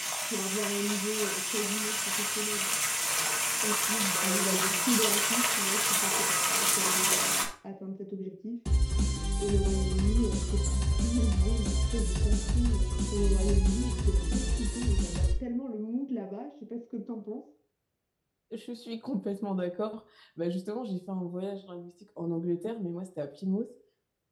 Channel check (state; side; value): identical; both; correlation 1.00